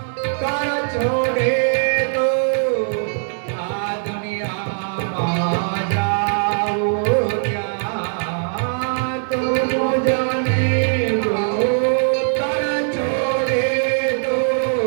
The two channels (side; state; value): left; silent; 66 dB below the other